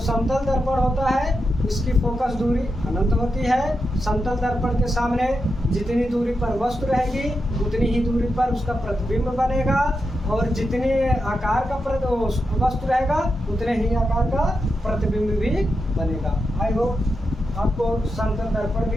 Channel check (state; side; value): normal; both; correlation 0.87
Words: दर्पण होता है इसकी फोकस दूरी अनंत होती है। समतल दर्पण के सामने जितनी दूरी पर वस्तु रहेगी उतनी ही दूरी पर उसका प्रतिबिंब बनेगा, और जितने आकार का वस्तु रहेगा उतने ही आकार का प्रतिबिंब भी बनेगा। आई होप आपको समतल दर्पण